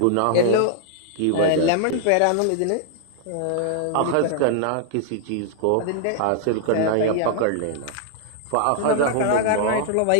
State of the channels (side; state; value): both; different; correlation 0.00